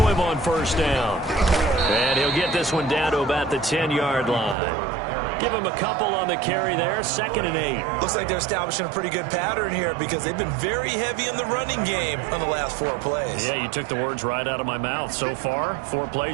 him on first down. And he'll get this one down to about the 10-yard line. Give him a couple on the carry there. 2nd and 8. Looks like they're establishing a pretty good pattern here because they've been very heavy in the running game on the last 4 plays. Yeah, you took the words right out of my mouth. So far, 4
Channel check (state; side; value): drops out; left; at 4.5 s